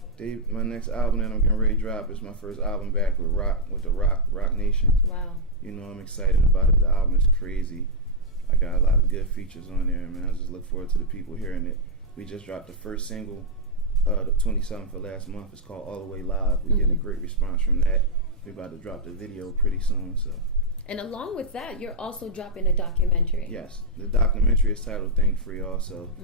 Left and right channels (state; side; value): normal; both; correlation -0.04